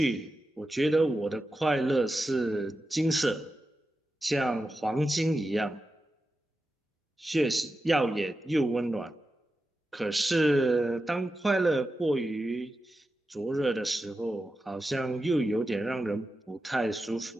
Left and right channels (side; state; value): both; normal; correlation 0.91